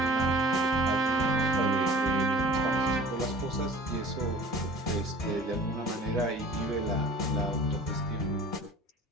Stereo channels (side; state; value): both; normal; correlation 0.44